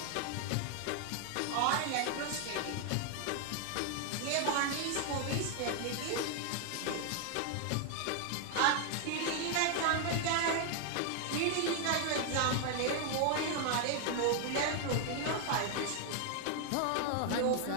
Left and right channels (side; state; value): both; different; correlation 0.00